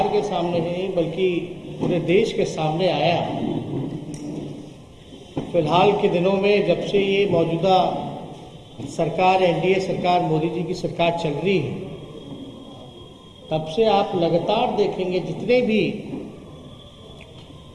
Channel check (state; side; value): identical; both; correlation 1.00